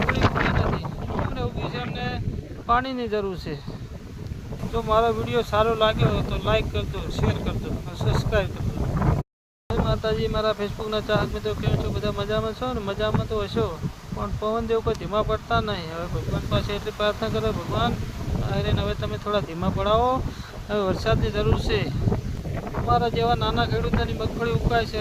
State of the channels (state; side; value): identical; both; correlation 1.00